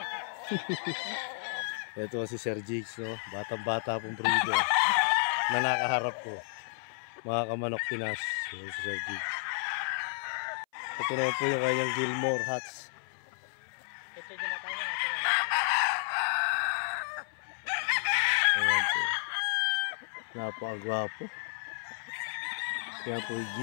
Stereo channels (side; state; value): right; silent; 56 dB below the other